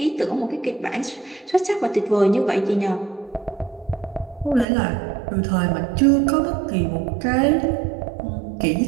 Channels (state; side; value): drops out; left; at 4.7 s